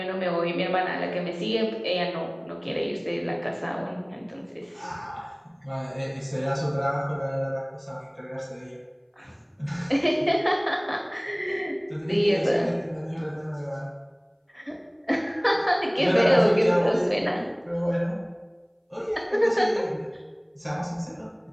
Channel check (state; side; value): identical; both; correlation 1.00